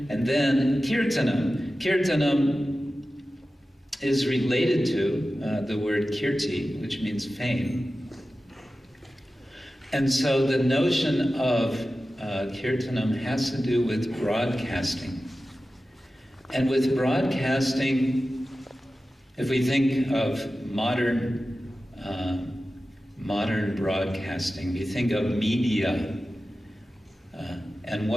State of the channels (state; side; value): normal; both; correlation 0.94